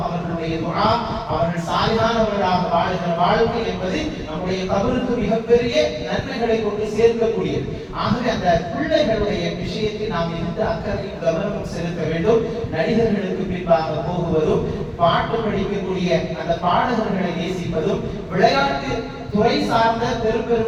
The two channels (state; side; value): identical; both; correlation 1.00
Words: அவர்களுடைய துஆ, அவர்கள் சாலிஹானவர்களாக வாழ்கிற வாழ்க்கை என்பது நம்முடைய கபருக்கு மிகப்பெரிய நன்மைகளை கொண்டு சேர்க்கக்கூடியது. ஆகவே அந்த பிள்ளைகளுடைய விஷயத்தில் நாம் மிகுந்த அக்கறையும் கவனமும் செலுத்த வேண்டும். நடிகர்களுக்கு பின்பாக போகுவதும், பாட்டு படிக்கக்கூடிய அந்த பாடகர்களை நேசிப்பதும், விளையாட்டு துறை சார்ந்த பெரும்